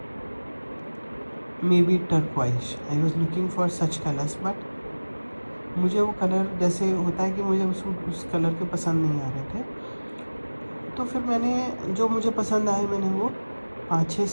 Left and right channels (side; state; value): both; inverted; correlation -1.00